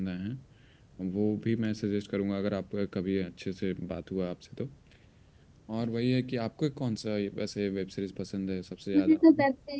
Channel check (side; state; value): both; identical; correlation 1.00